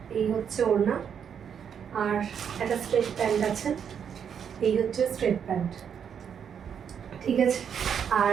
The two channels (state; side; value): quieter; left; 7.8 dB